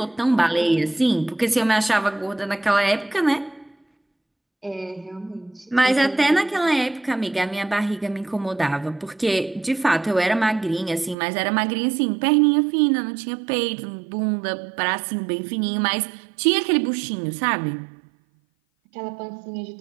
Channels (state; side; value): drops out; left; at 11.2 s